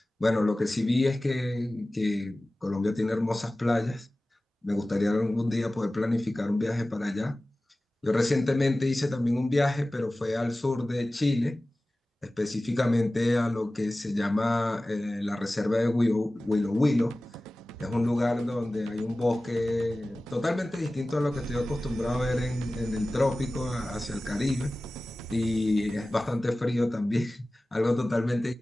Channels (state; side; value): normal; both; correlation 0.97